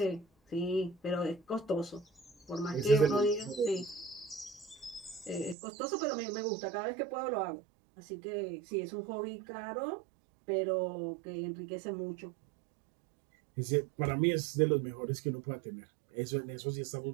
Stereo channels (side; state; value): left; drops out; at 5.6 s